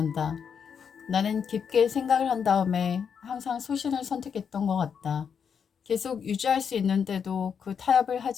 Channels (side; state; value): right; quieter; 7.0 dB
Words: 나는 깊게 생각을 한 다음에 항상 소신을 선택했던 것 같다. 계속 유지할 수 있는데도 그 타협을